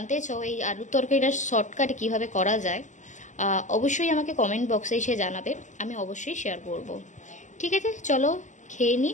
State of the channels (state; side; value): late; right; 0.35 ms